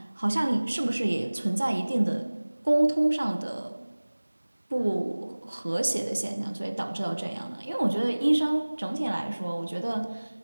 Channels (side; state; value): both; inverted; correlation -1.00